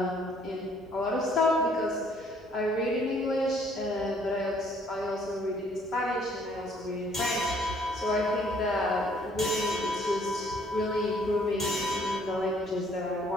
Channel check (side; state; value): both; normal; correlation 0.62